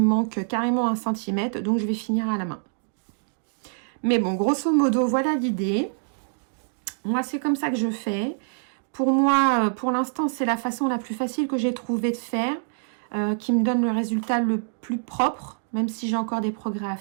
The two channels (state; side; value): silent; left; digital silence